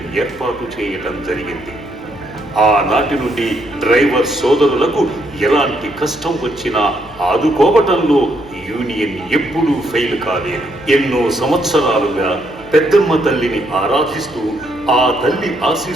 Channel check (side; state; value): left; noise; hum, 23 dB below the sound